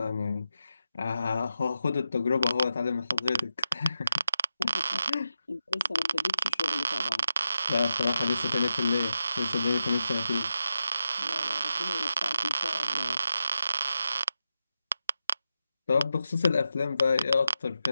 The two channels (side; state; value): both; inverted; correlation -0.88